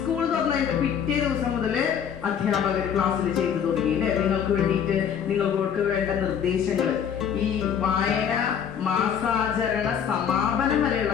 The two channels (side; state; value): right; quieter; 8.1 dB